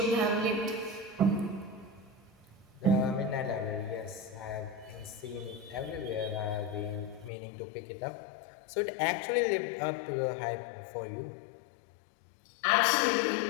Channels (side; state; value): right; drops out; at 7.3 s